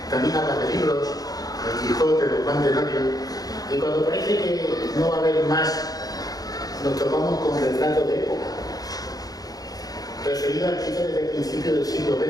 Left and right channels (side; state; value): right; late; 0.18 ms